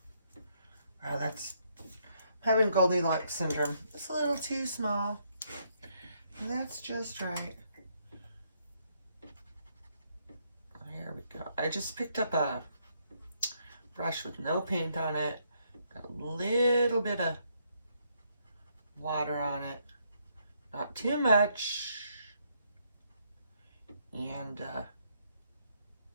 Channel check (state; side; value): inverted; both; correlation -0.73